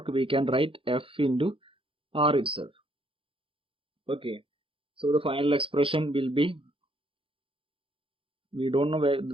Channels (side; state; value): left; late; 0.26 ms